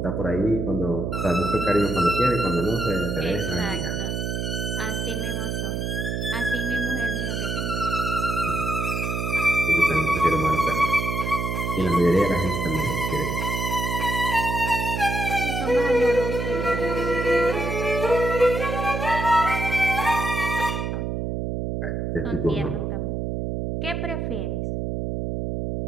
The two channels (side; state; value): right; noise; hum, 2 dB below the sound